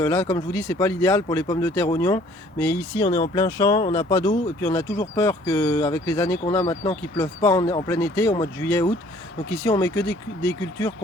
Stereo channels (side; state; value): both; normal; correlation 0.56